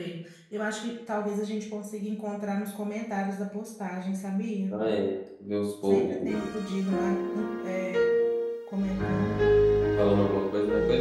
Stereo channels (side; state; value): both; identical; correlation 1.00